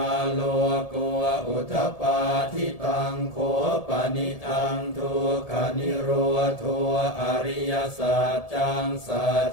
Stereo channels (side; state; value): right; late; 1.7 ms